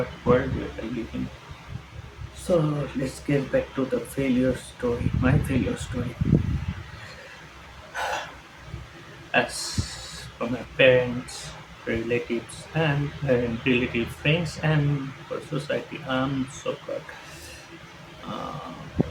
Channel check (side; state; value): both; identical; correlation 1.00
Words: world we are living. So let's get back to the failure story, my failure story. As for my parents, relatives, and relative friends, and for society, I'm so called